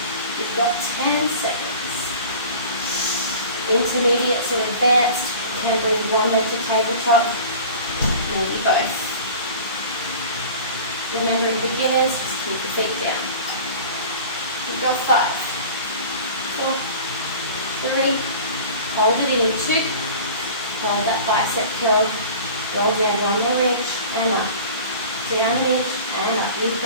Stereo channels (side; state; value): both; inverted; correlation -0.40